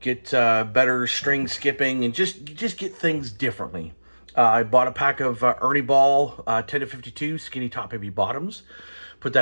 better string skipping, and just get things differently. I bought a pack of Ernie Ball 10 to 52 skinny top heavy bottoms. Put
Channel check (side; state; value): both; inverted; correlation -1.00